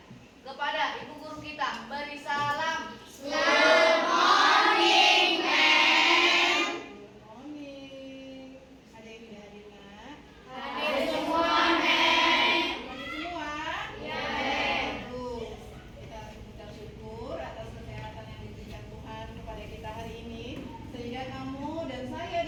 Kepada ibu guru kita beri salam. Good morning, ma'am. Good morning. Ada yang tidak hadir, Nak? Hadir semua, ma'am. Hadir semua? Ya, ma'am. Bagus. Kita mengucap syukur atas kesehatan yang diberikan Tuhan kepada kita hari ini, sehingga kamu dan saya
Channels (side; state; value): both; identical; correlation 1.00